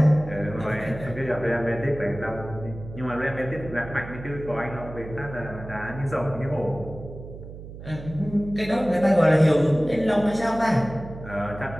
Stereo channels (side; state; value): right; noise; hum, 13 dB below the sound